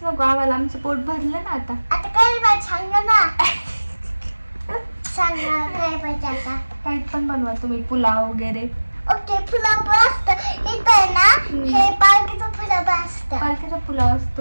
नको आम्हाला, आमचं पोट भरलं ना आता. आता काय पाहिजे सांग ना. सांग ना काय पाहिजे आता. काही पण बनवा तुम्ही, पुलाव वगैरे. ओके, पुलाव पण असतं इथं आहे ना. हे पालकीचा पुलाव असतं. पालकीचा पुलाव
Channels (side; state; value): both; inverted; correlation -1.00